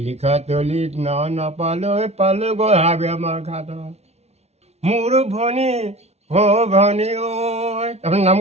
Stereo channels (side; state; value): left; late; 0.31 ms